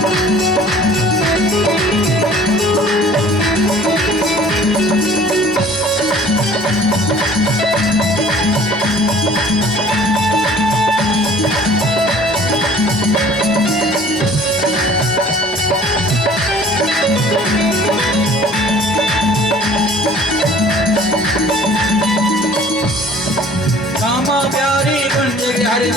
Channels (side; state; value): both; normal; correlation 0.51